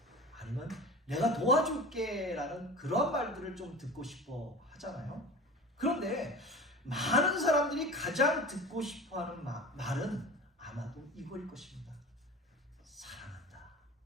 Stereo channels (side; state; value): both; normal; correlation 0.35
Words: 아니면 내가 도와줄게 라는 그런 말들을 좀 듣고 싶어 하잖아요. 그런데 많은 사람들이 가장 듣고 싶어 하는 말은 아마도 이거일 것입니다. 사랑한다.